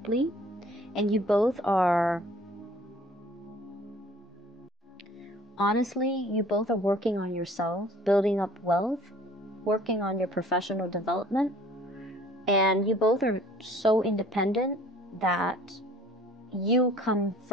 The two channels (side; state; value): both; normal; correlation 0.52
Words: And you both are, honestly, you both are working on yourself, building up wealth, working on your professional development. And you both are so independent that you come